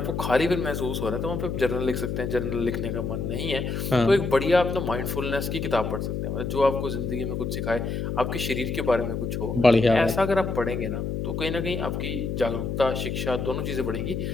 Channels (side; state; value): left; noise; hum, 2 dB below the sound